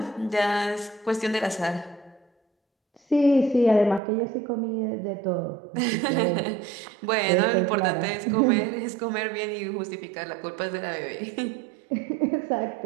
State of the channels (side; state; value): left; drops out; at 4.0 s